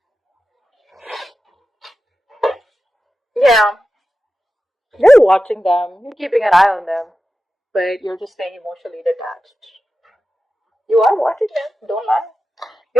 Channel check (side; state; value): both; normal; correlation 0.92